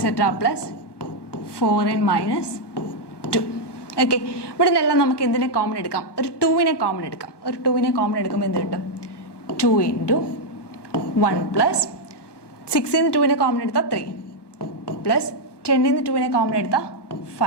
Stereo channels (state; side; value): late; right; 1.2 ms